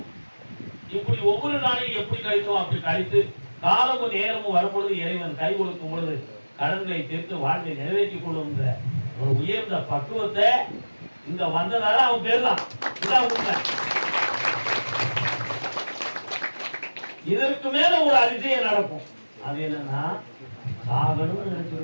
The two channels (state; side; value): inverted; both; correlation -1.00